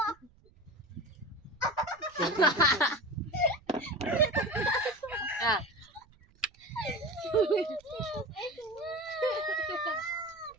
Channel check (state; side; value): noise; right; rumble, 29 dB below the sound